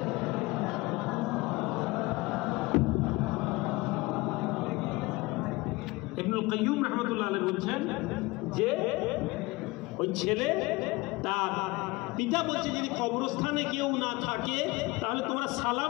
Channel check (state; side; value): quieter; right; 22.6 dB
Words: ইবনুল কাইয়্যিম রাহমাতুল্লাহ আলাইহি বলছেন যে ওই ছেলে তার পিতা বলছে, যদি কবরস্থানে কেউ না থাকে তাহলে তোমরা